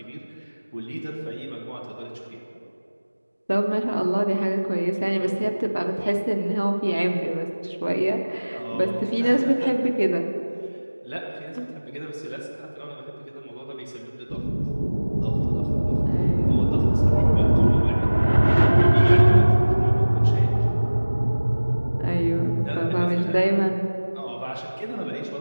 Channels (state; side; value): inverted; both; correlation -1.00